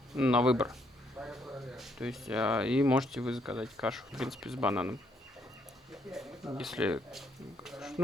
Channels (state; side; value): normal; both; correlation 0.72